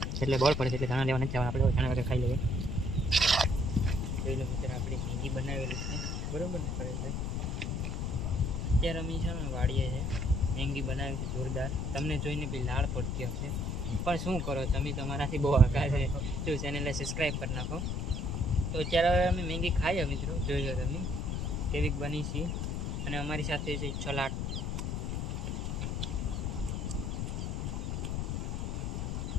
એટલે બળ પડે છે, એટલે ધાણા લેવા નથી જવાના. આપણે ધાણા વગર ખાઈ લઈએ. જોઈ લો મિત્રો, આપણી મેંગી બનાવેલી છે, બરાબર ને પરેશભાઈ? અત્યારે અમે છે ને વાડીએ છે, મેંગી બનાવી છે જોરદાર. તમને જોઈને બી લાળ પડતી હશે, પણ શું કરો તમે, તમારાથી બહુ આઘા છે. જો ચેનલને સબસ્ક્રાઈબ કરી નાખો. તો અત્યારે હવે અમે મેંગી ખાઈએ મિત્રો, જોઈ લો તમે કેવી બની છે. અને અમારી સાથે છે છલાટ.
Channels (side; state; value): left; noise; rumble, 1 dB below the sound